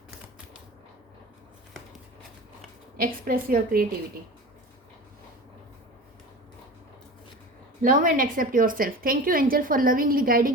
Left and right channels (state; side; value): normal; both; correlation 0.34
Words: Express your creativity. Love and accept your self. Thank you angel for lovingly